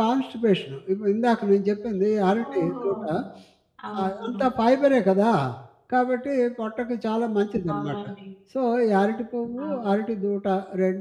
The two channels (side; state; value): both; identical; correlation 1.00